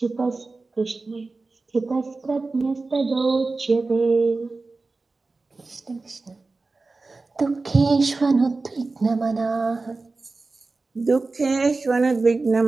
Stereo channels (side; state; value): left; quieter; 3.6 dB